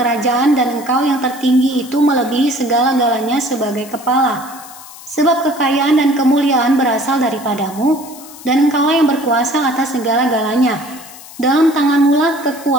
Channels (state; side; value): noise; left; hiss, 18 dB below the sound